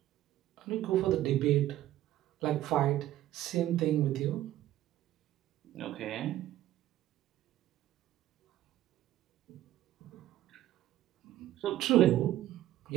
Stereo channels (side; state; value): left; quieter; 13.8 dB